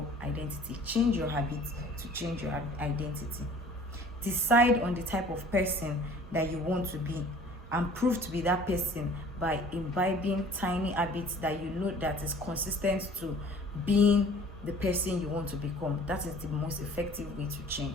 identity. Change your habits to change your identity. Decide on the type of person that you want to be, and prove to be that person by imbibing tiny habits that you know that is consistent to being the person you want to become. That is the most effective way to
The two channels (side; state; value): both; normal; correlation 0.49